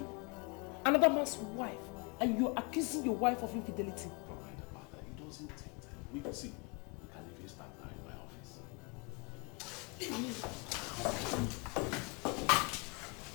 another man's wife, and you're accusing your wife of infidelity. Don't mind about that. It doesn't take time. We can see. We can even start now in my office.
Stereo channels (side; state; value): right; quieter; 31.9 dB